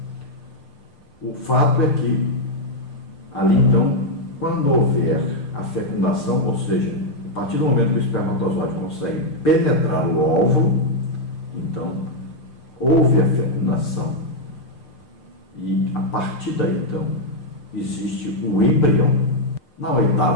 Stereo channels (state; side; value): late; right; 7.1 ms